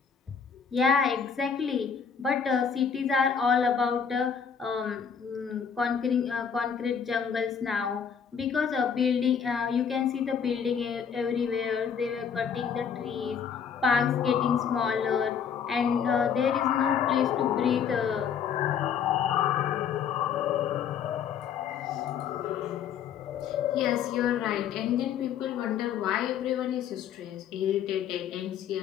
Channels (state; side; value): quieter; right; 7.2 dB